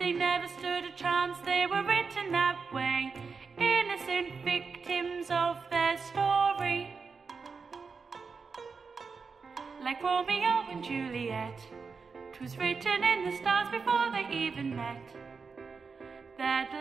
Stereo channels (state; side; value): quieter; left; 5.0 dB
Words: never stood a chance, they were written that way, innocent victims of their story. Like Romeo and Juliet, 'twas written in the stars before they even met, that